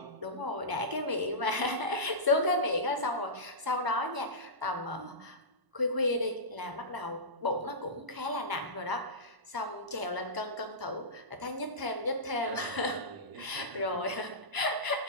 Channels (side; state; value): left; late; 1.0 ms